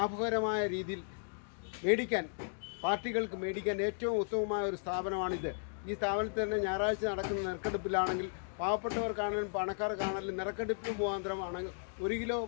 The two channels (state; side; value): silent; right; digital silence